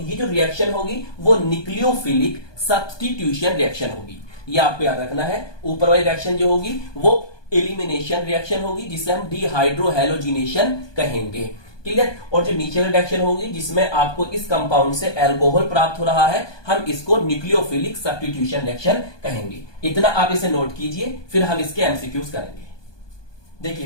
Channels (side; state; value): right; late; 1.2 ms